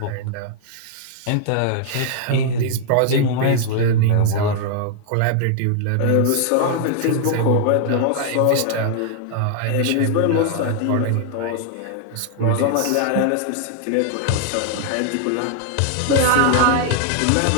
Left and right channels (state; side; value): different; both; correlation -0.01